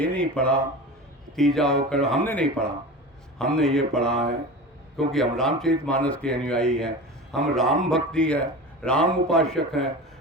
नहीं पढ़ा, तीजा होकर हमने नहीं पढ़ा। हमने ये पढ़ा है क्योंकि हम रामचरितमानस के अनुयायी हैं, हम राम भक्ति है, राम उपासक हैं।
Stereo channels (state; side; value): normal; both; correlation 0.31